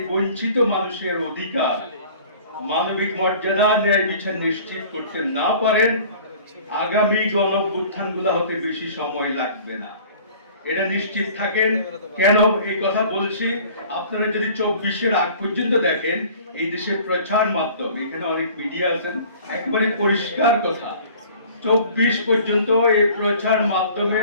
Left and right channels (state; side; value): inverted; both; correlation -0.48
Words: বঞ্চিত মানুষের অধিকার, মানবিক মর্যাদা, ন্যায় বিচার নিশ্চিত করতে না পারেন, আগামী গণঅভ্যুত্থানগুলো হতে বেশি সময় লাগবে না, এটা নিশ্চিত থাকেন। কেন এই কথা বলছি, আপনারা যদি 24-এর আগ পর্যন্ত দেখেন, এই দেশের প্রচার মাধ্যম, এখানে অনেক মিডিয়া আছেন, একবারে পরিষ্কার কথা, 24 পর্যন্ত এই প্রচার